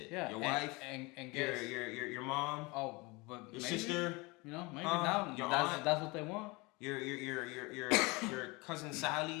Yeah, your wife and your mom. Oh, but your sister. Maybe now that's what they want. Your cousin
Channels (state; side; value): quieter; right; 25.6 dB